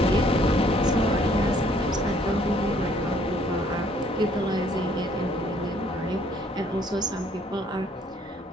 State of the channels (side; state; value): both; normal; correlation 0.63